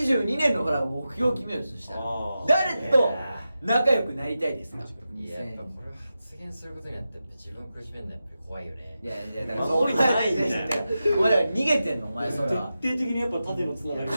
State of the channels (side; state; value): both; inverted; correlation -0.92